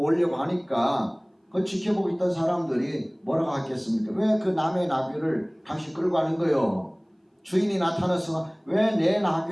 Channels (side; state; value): both; identical; correlation 1.00